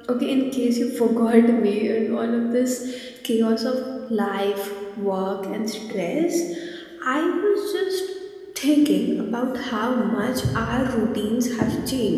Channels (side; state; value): both; identical; correlation 1.00